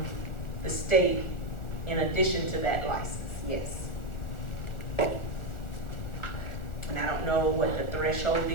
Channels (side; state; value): right; late; 1.4 ms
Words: the state in addition to that license, yes. And I don't know what the threshold